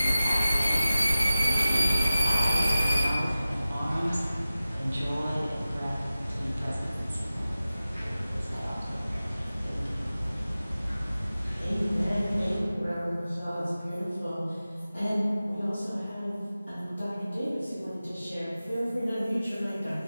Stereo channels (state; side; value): inverted; both; correlation -0.96